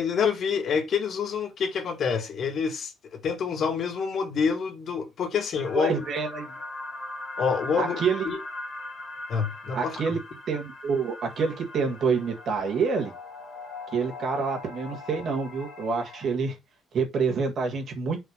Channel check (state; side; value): normal; both; correlation 0.64